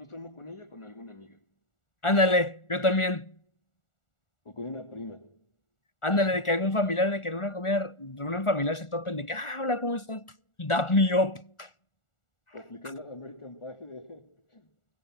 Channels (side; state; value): right; late; 1.4 ms